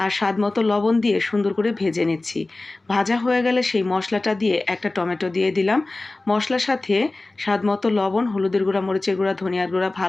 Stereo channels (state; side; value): quieter; right; 3.0 dB